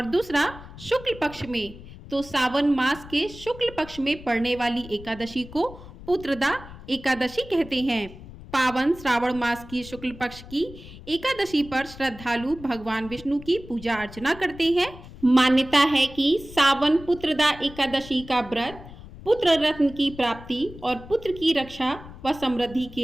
दूसरा शुक्ल पक्ष में। तो सावन मास के शुक्ल पक्ष में पड़ने वाली एकादशी को पुत्रदा एकादशी कहते हैं। पावन श्रावण मास की शुक्ल पक्ष की एकादशी पर श्रद्धालु भगवान विष्णु की पूजा अर्चना करते हैं। मान्यता है कि सावन पुत्रदा एकादशी का व्रत पुत्र रत्न की प्राप्ति और पुत्र की रक्षा व समृद्धि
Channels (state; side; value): noise; left; rumble, 16 dB below the sound